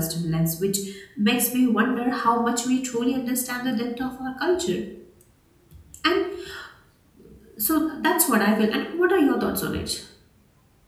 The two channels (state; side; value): identical; both; correlation 1.00